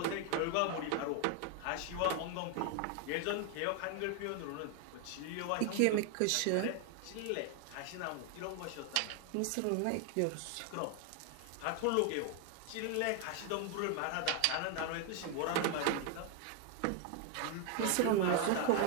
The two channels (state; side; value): different; both; correlation 0.01